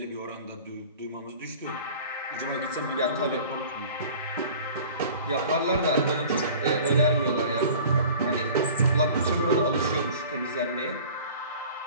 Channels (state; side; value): inverted; both; correlation -0.44